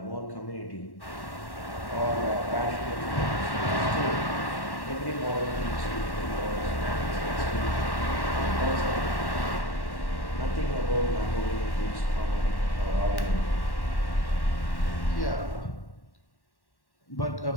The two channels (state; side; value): late; right; 1.1 ms